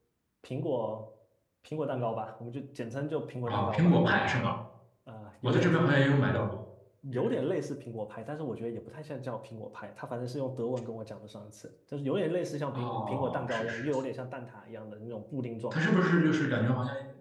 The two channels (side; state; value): both; identical; correlation 1.00